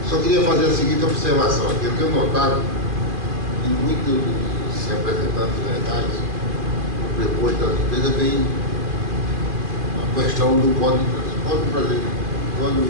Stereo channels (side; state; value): left; late; 2.5 ms